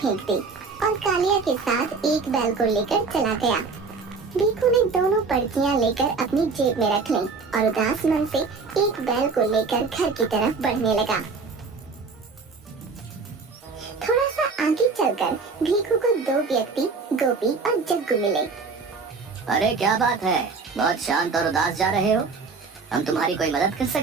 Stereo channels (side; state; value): left; quieter; 4.6 dB